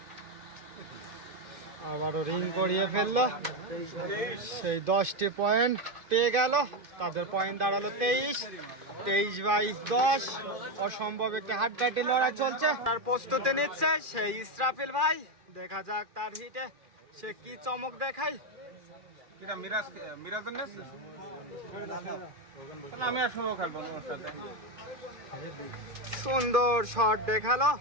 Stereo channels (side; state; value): left; late; 2.5 ms